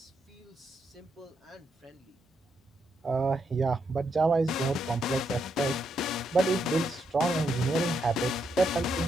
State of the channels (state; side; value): normal; both; correlation 0.79